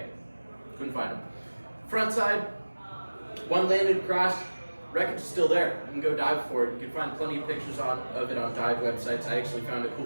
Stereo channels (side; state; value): both; inverted; correlation -1.00